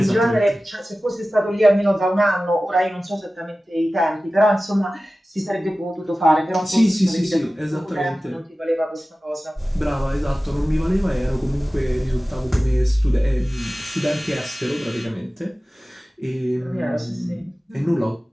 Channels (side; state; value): both; normal; correlation 0.96